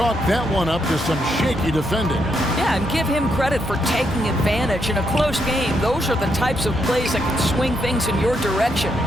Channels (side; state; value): both; normal; correlation 0.78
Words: that one up to some shaky defending. Yeah, and give him credit for taking advantage in a close game. Those are the types of plays that can swing things in your direction.